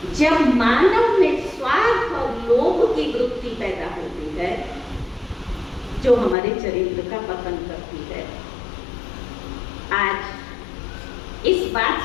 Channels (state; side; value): drops out; right; at 6.4 s